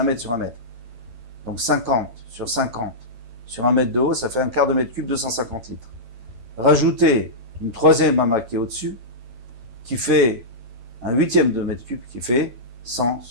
mètre sur 1 mètre. Donc 50 sur 50 sur 1 mètre de haut, ça fait un quart de mètre cube, 250 litres. Rajoutez une troisième ama qui est au-dessus, qui fait un huitième de mètre cube, qui fait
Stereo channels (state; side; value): late; left; 9.0 ms